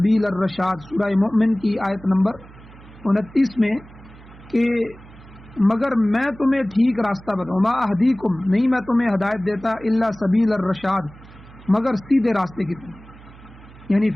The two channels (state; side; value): noise; right; hum, 21 dB below the sound